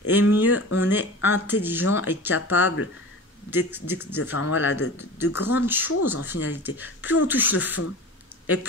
et mieux on est intelligent et capable de grandes choses en finalité. Plus on touche le fond, et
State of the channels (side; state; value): both; normal; correlation 0.35